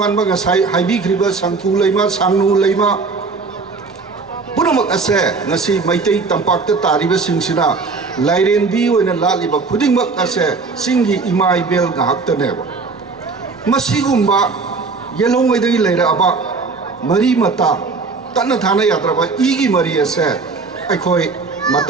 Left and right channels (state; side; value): quieter; left; 4.3 dB